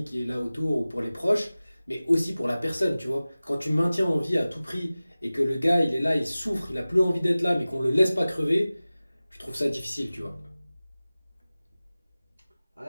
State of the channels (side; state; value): both; inverted; correlation -0.97